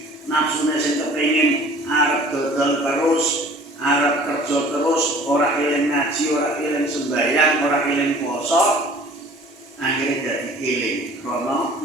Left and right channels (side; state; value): both; normal; correlation 0.48